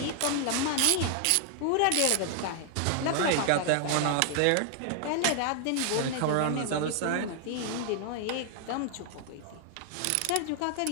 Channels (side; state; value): both; different; correlation 0.00